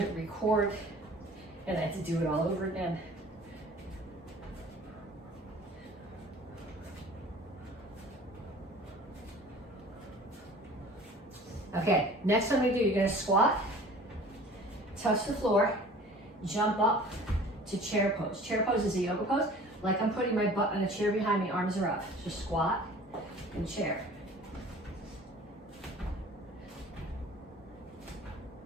record, and I had to do it all over again. Okay, next time we do, you're gonna squat, touch the floor, jump up to chair pose. Chair pose is a yoga pose. Like I'm putting my butt on a chair behind me, arms are up. Just squat and chair.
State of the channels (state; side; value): normal; both; correlation 0.46